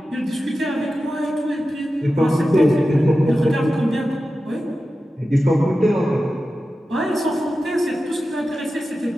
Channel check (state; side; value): normal; both; correlation 0.93